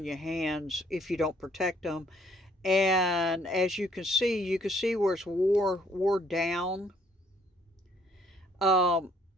your hands if you don't protect them. And as you can see where it's wore down. Um,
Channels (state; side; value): normal; both; correlation 0.64